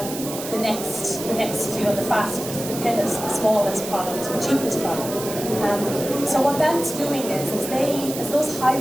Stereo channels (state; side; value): noise; right; hiss, 9 dB below the sound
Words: the next, the fastest, the thinnest, the smallest product, the cheapest product. So what that's doing is as those high